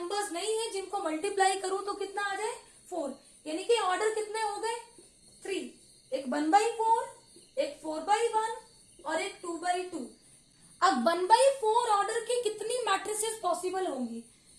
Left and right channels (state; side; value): identical; both; correlation 1.00